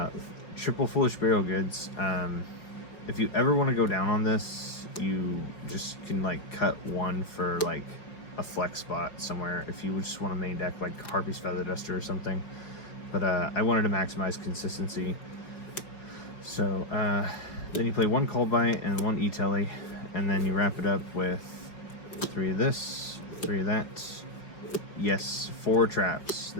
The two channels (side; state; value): right; late; 4.7 ms